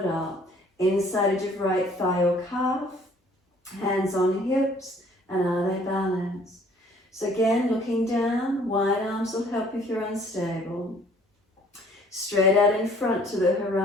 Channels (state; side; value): normal; both; correlation 0.57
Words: up. Inside edge of right thigh or calf. Hands on hips, and are they balanced? So again, looking down, wide arms will help if you're unstable. Straight out in front to the